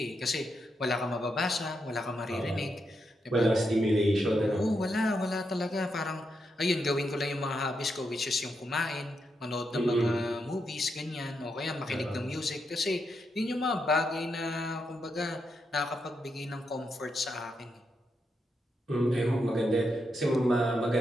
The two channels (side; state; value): both; normal; correlation 0.83